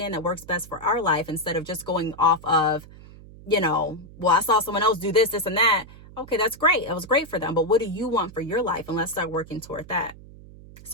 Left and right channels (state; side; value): noise; right; hum, 19 dB below the sound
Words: that works best for our life instead of just going off of, well, I saw someone else do this, this, and that. Okay, that's great. It was great for them. But what do you want for your life? And let's start working toward that.